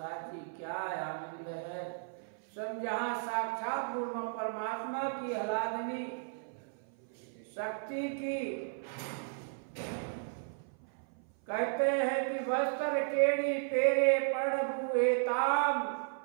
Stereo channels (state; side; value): silent; left; 55 dB below the other